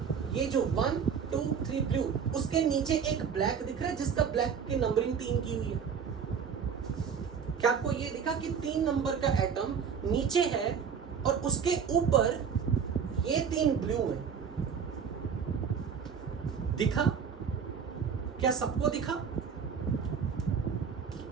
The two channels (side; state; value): left; quieter; 6.8 dB